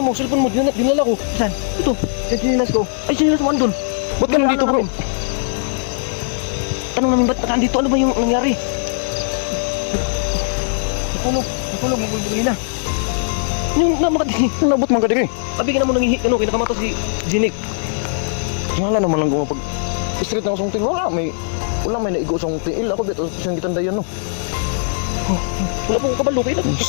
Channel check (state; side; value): silent; right; digital silence